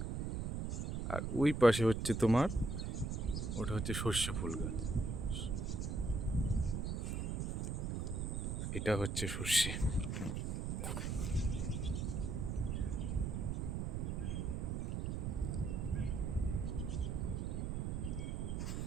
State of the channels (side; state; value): right; noise; rumble, 1 dB below the sound